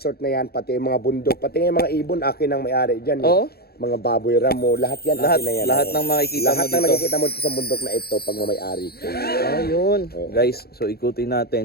na yan, pati yung mga bundok, pati yung mga ibon, akin ang may-ari dyan. Oo. Mga baboy ramo, lahat yan Lahat, akin na yan. lahat ng makikita lahat mo ng dito. nakikita mo sa bundok na ito, pag may-ari ko. Ayun. Oo. Guys, so ikutin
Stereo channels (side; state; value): right; late; 0.46 ms